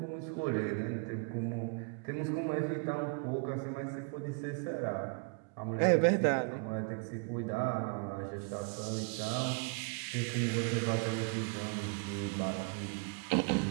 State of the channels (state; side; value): quieter; left; 37.1 dB